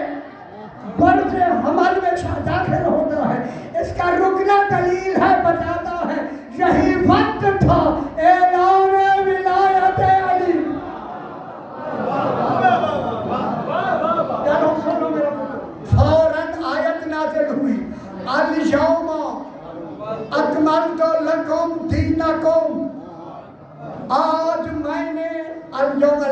बर्ज़े हमल में दाखिल होता है। इसका रुकना दलील है, बताता है यही वक्त था ऐलान विलायत अली। सुनो मेरा फौरन आयत नाज़िल हुई, अल यौमा अकमलतु लकुम दीनकुम। आज मैंने अल यौम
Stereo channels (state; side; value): identical; both; correlation 1.00